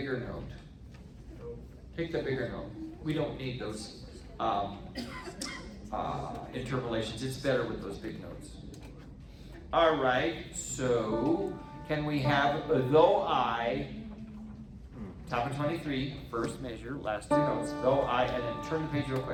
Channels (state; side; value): identical; both; correlation 1.00